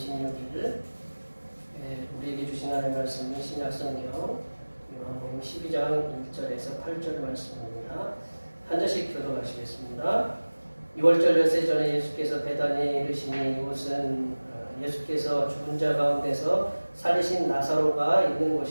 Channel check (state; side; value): inverted; both; correlation -1.00